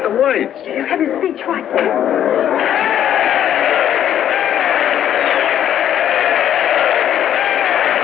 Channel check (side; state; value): right; quieter; 10.4 dB